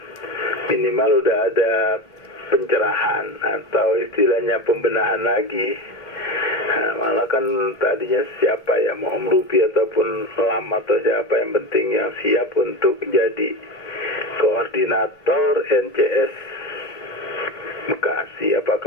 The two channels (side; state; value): right; late; 2.1 ms